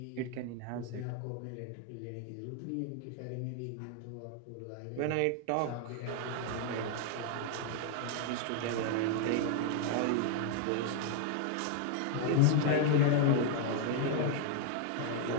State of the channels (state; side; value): different; both; correlation 0.00